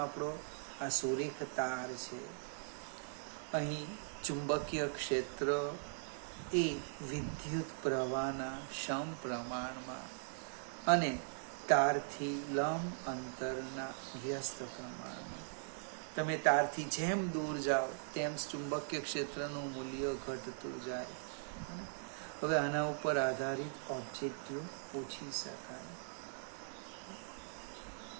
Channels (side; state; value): left; silent; digital silence